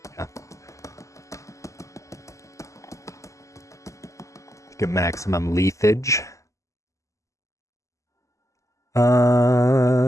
Yeah. Get maximum leafage. I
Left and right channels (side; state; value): right; late; 0.15 ms